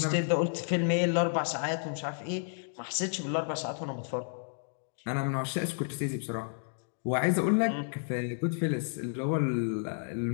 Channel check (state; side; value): silent; right; digital silence